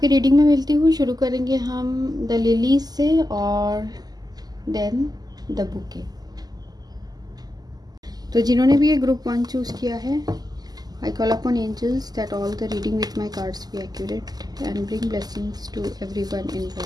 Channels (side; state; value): left; late; 0.19 ms